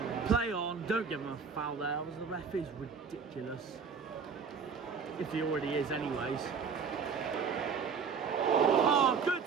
Play on, don't give him a foul there. The ref is ridiculous. If he already is anyways. Oh, good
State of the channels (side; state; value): left; quieter; 5.8 dB